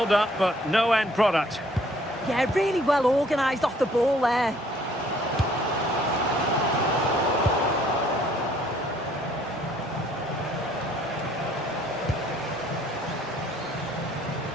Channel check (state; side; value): normal; both; correlation 0.61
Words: but no end product. Yeah, really well organised off the ball there.